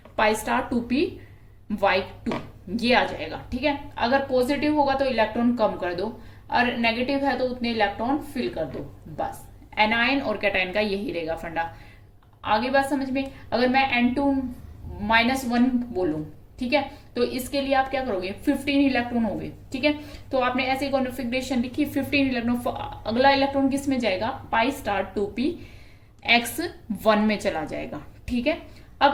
स्टार 2p(y)2 ये आ जाएगा, ठीक है। अगर पॉजिटिव होगा तो इलेक्ट्रॉन कम कर दो और नेगेटिव है तो उतने इलेक्ट्रॉन फिल कर दो, बस एनायन और कैटायन का यही रहेगा फंडा। आगे बात समझ में। अगर मैं N2-1 बोलूं, ठीक है, तो इसके लिए आप क्या करोगे 15 इलेक्ट्रॉन हो गए, ठीक है। तो आपने ऐसे कॉन्फ़िगरेशन लिखी 15 इलेक्ट्रॉन, अगला इलेक्ट्रॉन किस में जाएगा पाई स्टार 2p(x) 1 में चला जाएगा, ठीक है।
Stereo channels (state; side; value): identical; both; correlation 1.00